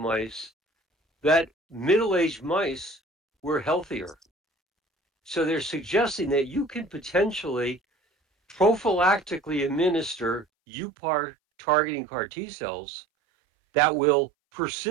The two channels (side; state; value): left; drops out; at 10.5 s